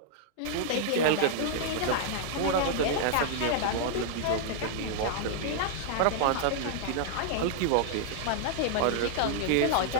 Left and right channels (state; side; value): different; both; correlation -0.01